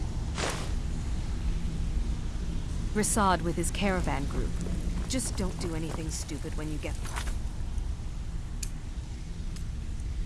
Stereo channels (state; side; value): identical; both; correlation 1.00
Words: Rasad with his caravan group. Just don't do anything stupid when you get there.